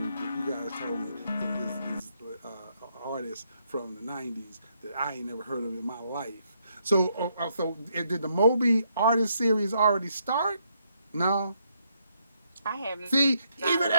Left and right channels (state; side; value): inverted; both; correlation -0.75